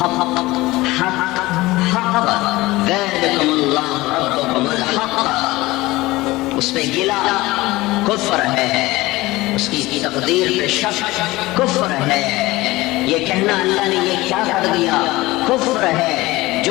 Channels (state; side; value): quieter; right; 19.6 dB